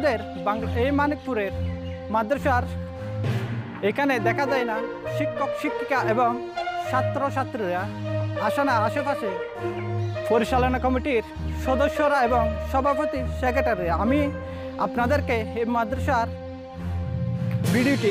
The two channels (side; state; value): both; identical; correlation 1.00